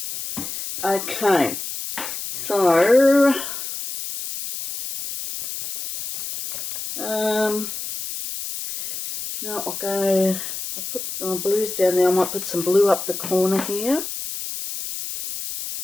Okay, so now I'll put my blues down there. I might put some blue up the corner here.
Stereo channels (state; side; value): noise; left; hiss, 7 dB below the sound